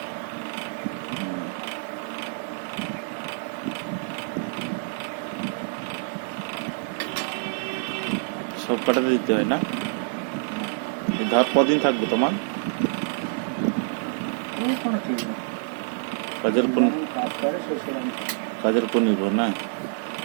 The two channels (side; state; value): left; silent; digital silence